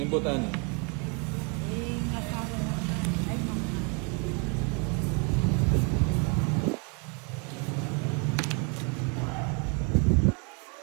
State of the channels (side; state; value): left; quieter; 33.6 dB